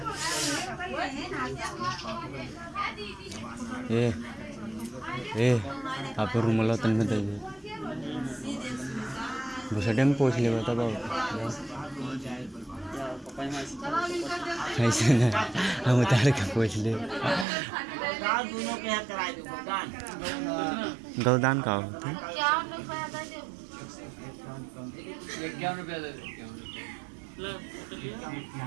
ए आप रूम लो तन में दे बुसडे में पूछ ले बता ऐसे ना हम उतार के पूछ ले दोनों के हाथ कराए दो गौदान का होता है ₹51 दे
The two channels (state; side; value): drops out; left; at 17.4 s